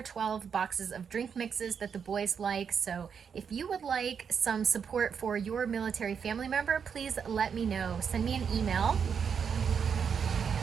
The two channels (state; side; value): quieter; left; 6.9 dB